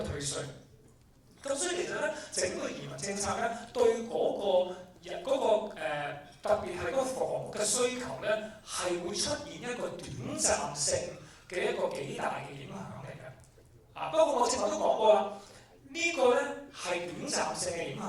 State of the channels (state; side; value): identical; both; correlation 1.00